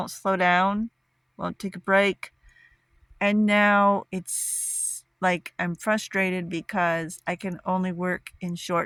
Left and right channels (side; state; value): both; identical; correlation 1.00